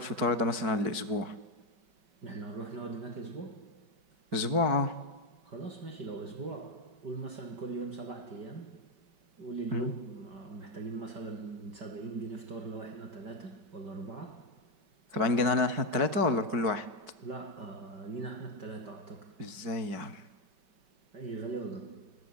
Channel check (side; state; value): left; late; 5.2 ms